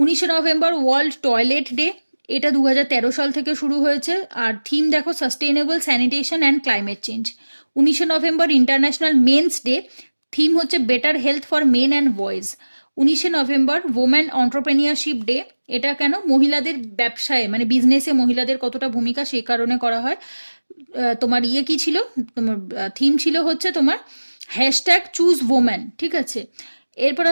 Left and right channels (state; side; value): inverted; both; correlation -1.00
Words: November world toilet day, এটা 2013 সাল থেকে শুরু হয়েছে, আর থিম দেখো sustainable sanitation and climate change. 19 November international men's day, theme হচ্ছে better health for men and boys. 19 November women entrepreneurship day, এটা কেন, মহিলাদের ব্যবসায় মানে বিজনেসে মহিলাদের কতটা ভূমিকা, সেই কারণে করা হয়। তোমার কি ছিল, তোমার থিম ছিল হচ্ছে তোমার হ্যাশট্যাগ চুজ ওমেন, ঠিক আছে। এরপর